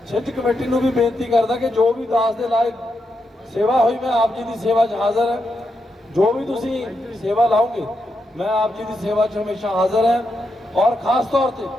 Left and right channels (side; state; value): both; normal; correlation 0.84